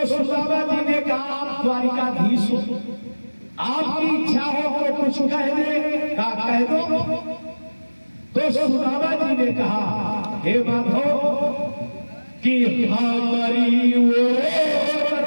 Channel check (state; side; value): inverted; both; correlation -1.00